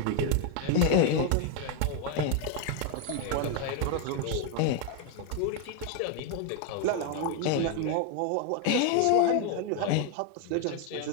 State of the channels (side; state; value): both; different; correlation 0.01